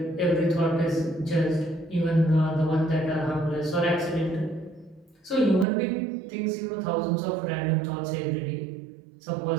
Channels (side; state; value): left; drops out; at 5.7 s